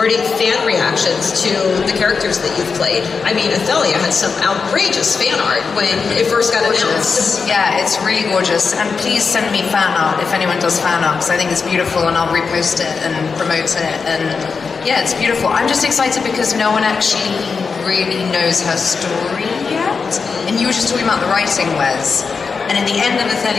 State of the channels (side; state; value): right; quieter; 5.2 dB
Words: fan reactions to the characters that you've played? I mean, Ithelia had some outrageous fan art when it first got announced. Yeah, it's really gorgeous. And please send me fan art if anyone does fan art, because I think it's beautiful, and I'll repost it and promote it. And yeah, it's beautiful. I'm just excited because no one actually really knows her story yet. And you were just talking about the writing, Wes. And in the end of